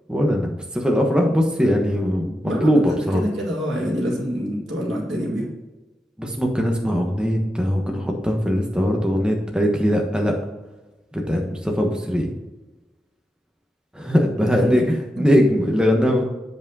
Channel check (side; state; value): both; normal; correlation 0.88